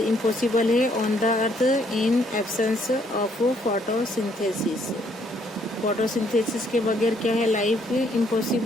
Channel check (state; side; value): normal; both; correlation 0.68